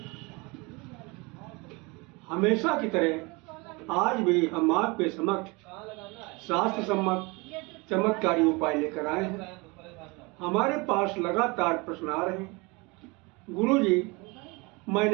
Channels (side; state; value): left; quieter; 26.7 dB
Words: हमेशा की तरह आज भी हम आपके समक्ष शास्त्र सम्मत चमत्कारी उपाय लेकर आए हैं। हमारे पास लगातार प्रश्न आ रहे हैं। गुरुजी,